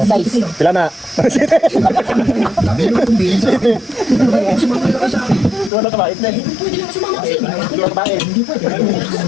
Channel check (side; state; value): right; drops out; at 5.7 s